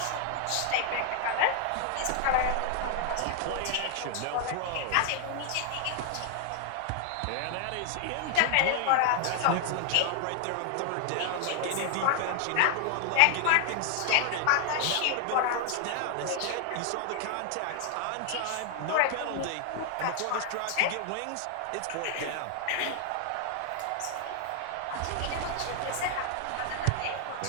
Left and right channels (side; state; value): both; different; correlation 0.00